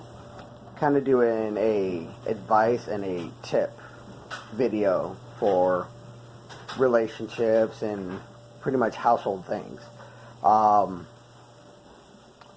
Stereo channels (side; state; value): both; identical; correlation 1.00